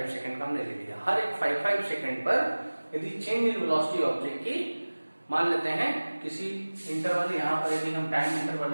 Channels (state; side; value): inverted; both; correlation -1.00